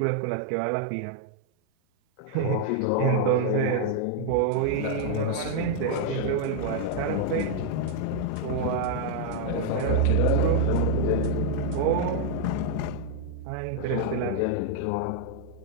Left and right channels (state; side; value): different; both; correlation 0.00